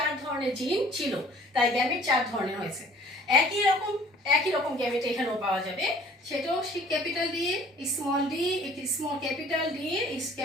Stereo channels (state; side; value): normal; both; correlation 0.52